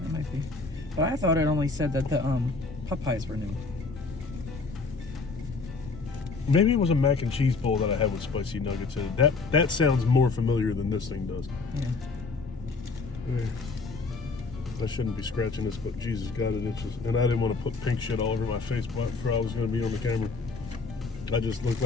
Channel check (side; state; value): right; quieter; 4.0 dB